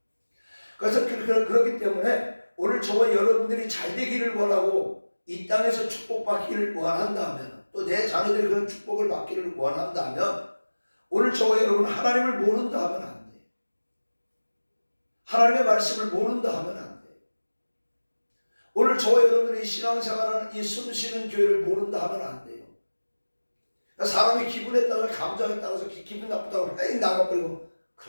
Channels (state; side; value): inverted; both; correlation -1.00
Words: 그래서 그렇기 때문에 오늘 저와 여러분들이 잘 되기를 원하고 이 땅에서 축복받기를 원한다면, 또 내 자녀들이 그런 축복을 받기를 원한다면, 오늘 저와 여러분 하나님을 모른다 하면 안 돼요. 하나님의 말씀을 모른다 하면 안 돼요. 오늘 저와 여러분들이 신앙생활하는 이 숨쉬는 교회를 모른다 하면 안 돼요. 사람이 기분에 따라서, 감정에 따라서 기분 나쁘다고 에이 나가버리고